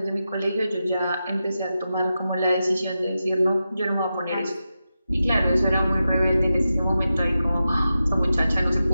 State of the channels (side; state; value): both; inverted; correlation -0.90